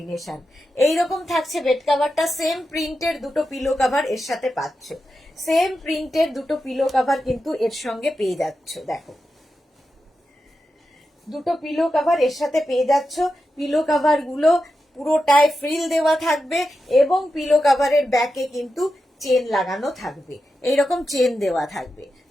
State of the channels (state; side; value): normal; both; correlation 0.89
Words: এইরকম থাকছে বেড কাভারটা। সেম প্রিন্টের দুটো পিলো কাভার এর সাথে পাচ্ছ, সেম প্রিন্টের দুটো পিলো কাভার কিন্তু এর সঙ্গে পেয়ে যাচ্ছ। দেখো দুটো পিলো কাভার এর সাথে পেয়ে যাচ্ছ। পিলো কাভার গুলো পুরোটায় ফ্রিল দেওয়া থাকবে এবং পিলো কাভারের ব্যাকে কিন্তু চেন লাগানো থাকবে, এইরকম চেন দেওয়া থাকবে।